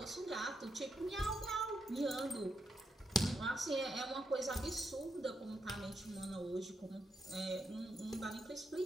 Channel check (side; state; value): both; normal; correlation 0.82